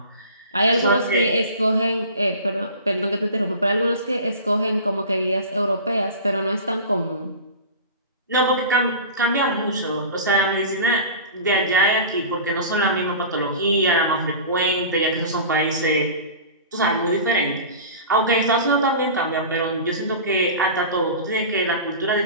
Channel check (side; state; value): both; inverted; correlation -0.35